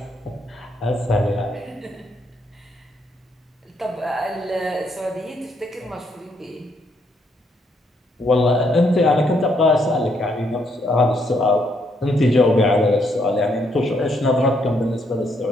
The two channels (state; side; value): normal; both; correlation 0.73